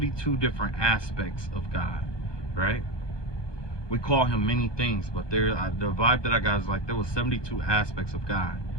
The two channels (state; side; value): late; right; 1.2 ms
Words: different aspects of God, right? We call him many things, but the vibe that I got is like there was 72 aspects of God.